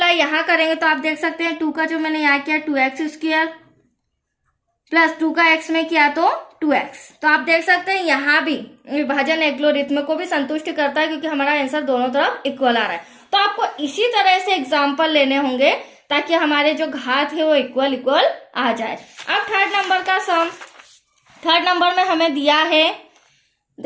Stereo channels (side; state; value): both; identical; correlation 1.00